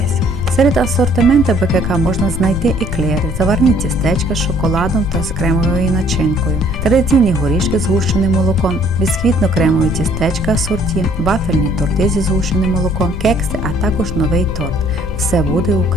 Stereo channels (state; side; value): noise; left; rumble, 6 dB below the sound